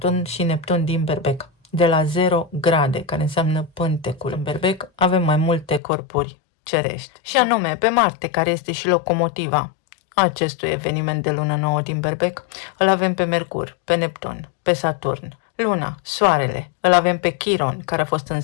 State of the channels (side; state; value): right; drops out; at 5.8 s